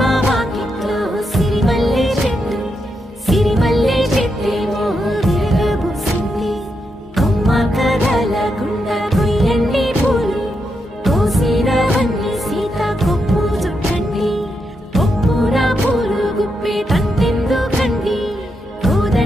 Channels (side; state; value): both; normal; correlation 0.83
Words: వాకిట్లో సిరిమల్లె చెట్టేమో విరగబూసింది కొమ్మ కదలకుండా కొయ్యండి పూలు కోసినవన్నీ సీత కొప్పు చుట్టండి కొప్పున పూలు గుప్పే తంతెందుకండి